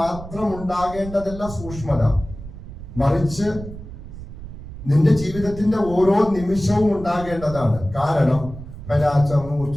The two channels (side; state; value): right; noise; rumble, 13 dB below the sound